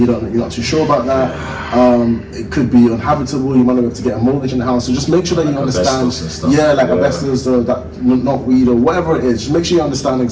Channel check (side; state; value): both; identical; correlation 1.00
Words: not too sure about that. It could be uninhabitable. You might not be able to get a mortgage in the house. So just make sure that you understand. Asbestos, that knotweed or whatever it is. Just make sure you understand